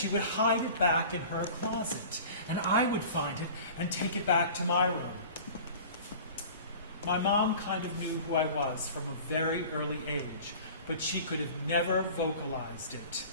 would hide it back in her closet, and I would find it and take it back to my room. My mom kind of knew who I was from a very early age, but she could have never vocalized it.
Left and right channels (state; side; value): inverted; both; correlation -0.41